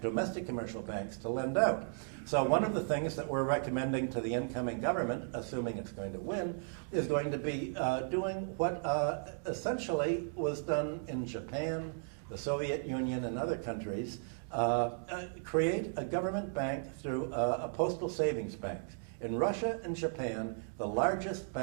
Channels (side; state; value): left; silent; digital silence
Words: domestic commercial banks, to lend out. So one of the things that we're recommending to the incoming government, assuming it's going to win, is going to be doing what essentially was done in Japan, the Soviet Union, and other countries, create a government bank through a postal savings bank. In Russia and Japan, the largest